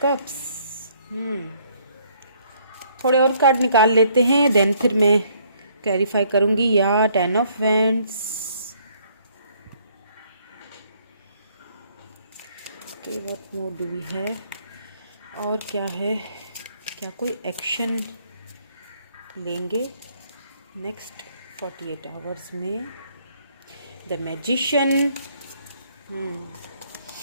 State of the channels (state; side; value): inverted; both; correlation -0.65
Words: cups. थोड़े और कार्ड निकाल लेते हैं, देन फिर मैं क्लैरिफाई करूँगी। या 10 of wands. Okay, what more do we have? और क्या है? क्या कोई एक्शन लेंगे नेक्स्ट 48 आवर्स में? The magician.